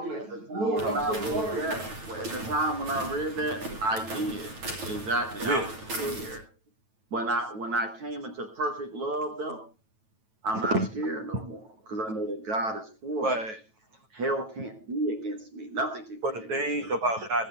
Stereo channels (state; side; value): late; left; 9.2 ms